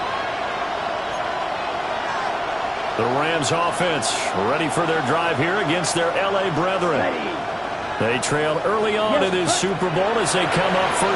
The Rams offense ready for their drive here against their LA brethren. They trailed early on in this Super Bowl as they come up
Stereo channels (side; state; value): both; identical; correlation 1.00